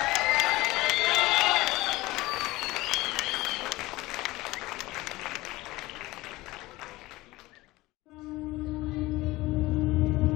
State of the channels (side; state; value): right; quieter; 19.5 dB